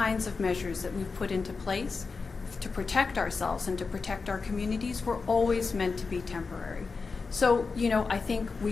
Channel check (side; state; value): right; quieter; 4.6 dB